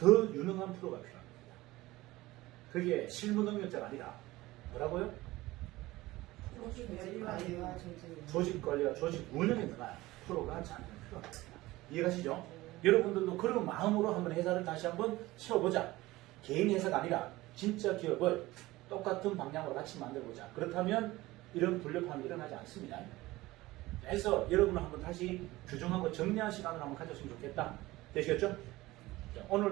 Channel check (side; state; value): left; quieter; 18.6 dB